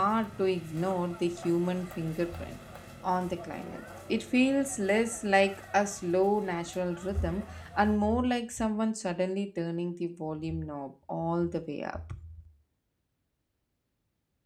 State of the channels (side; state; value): both; identical; correlation 1.00